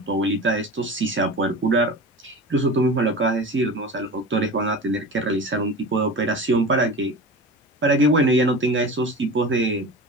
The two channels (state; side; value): normal; both; correlation 0.33